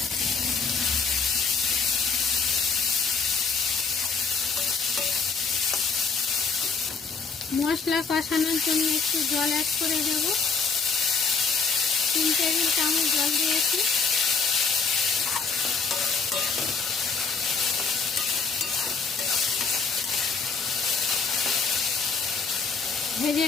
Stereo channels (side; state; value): right; quieter; 5.0 dB